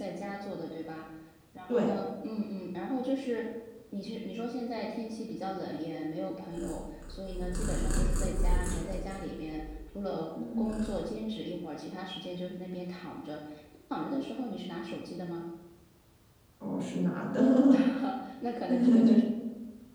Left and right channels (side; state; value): both; identical; correlation 1.00